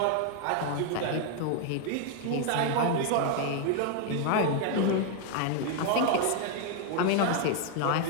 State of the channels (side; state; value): both; different; correlation 0.00